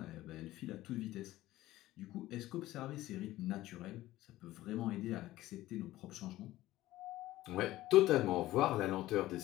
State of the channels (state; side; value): quieter; right; 16.1 dB